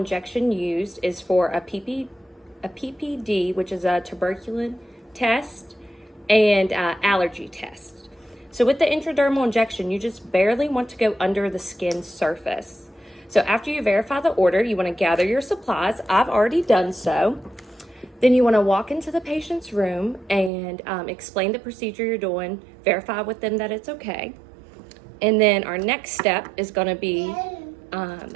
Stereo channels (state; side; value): drops out; left; at 20.5 s